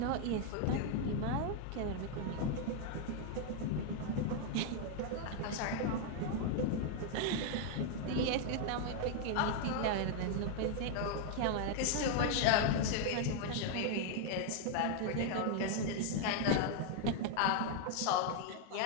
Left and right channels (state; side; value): different; both; correlation 0.00